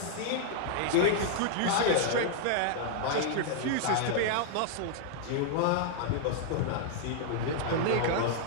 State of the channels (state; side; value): different; both; correlation 0.00